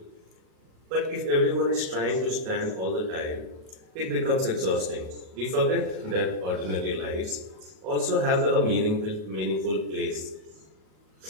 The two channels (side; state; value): left; late; 38 ms